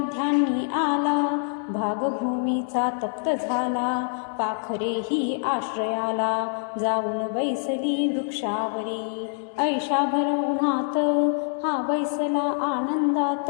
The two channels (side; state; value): right; silent; 62 dB below the other